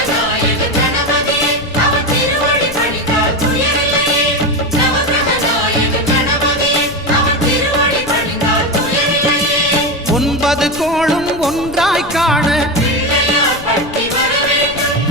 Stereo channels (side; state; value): left; noise; rumble, 15 dB below the sound